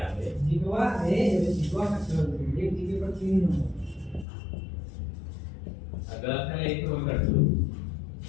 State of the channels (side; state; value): right; drops out; at 4.2 s